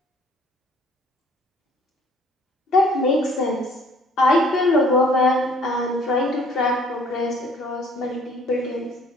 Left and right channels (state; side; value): normal; both; correlation 0.57